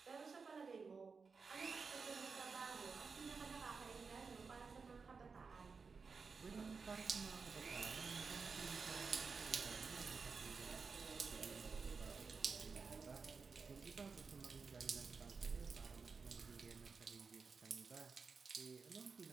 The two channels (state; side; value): quieter; left; 4.9 dB